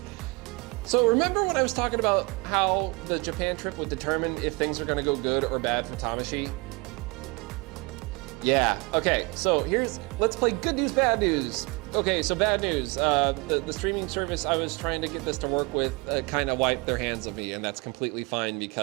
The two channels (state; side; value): quieter; left; 28.0 dB